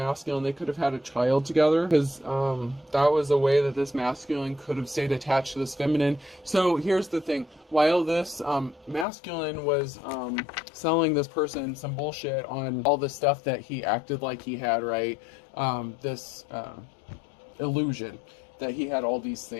They could have had a child together, because that was a way that this masculine could have stayed attached to this feminine. So here's the thing. While this masculine was selling this person some bullshit on all the stuff that he acted like he had, right? This illusion that he had all these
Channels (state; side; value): drops out; right; at 9.1 s